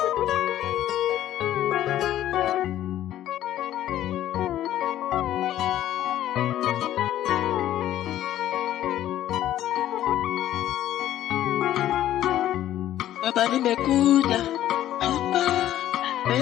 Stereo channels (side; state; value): right; quieter; 12.6 dB